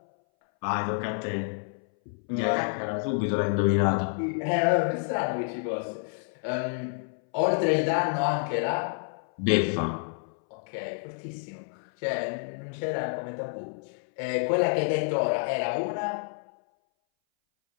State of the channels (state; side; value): silent; right; 59 dB below the other